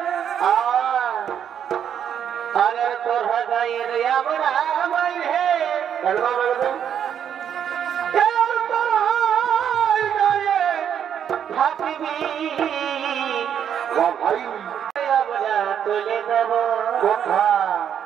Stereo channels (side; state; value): left; quieter; 8.8 dB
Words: আরে তোরা যাই রে আমরা হে একদম একদম ভাই আমরা তুলে দেব কথা